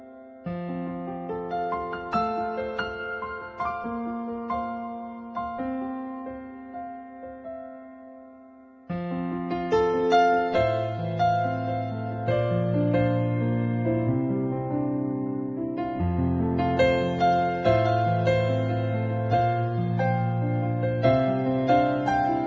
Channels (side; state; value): both; identical; correlation 1.00